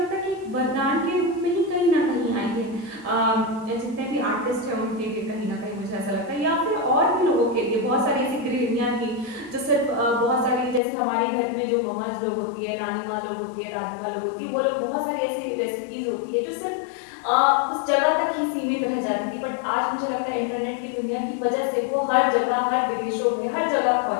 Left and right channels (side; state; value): right; drops out; at 10.8 s